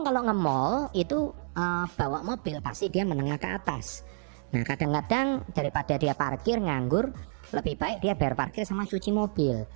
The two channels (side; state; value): left; silent; 59 dB below the other